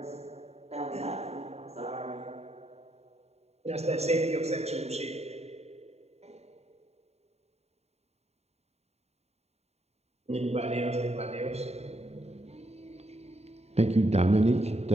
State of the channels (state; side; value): late; left; 0.31 ms